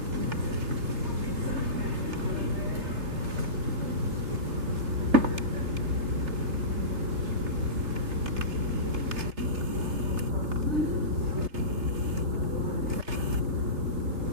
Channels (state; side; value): late; left; 3.3 ms